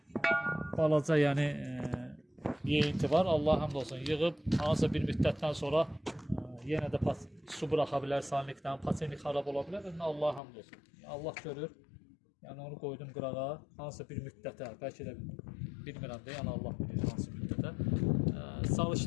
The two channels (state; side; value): drops out; right; at 10.4 s